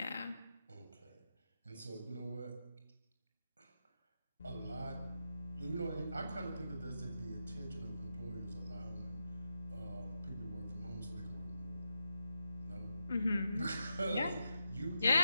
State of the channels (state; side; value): inverted; both; correlation -0.86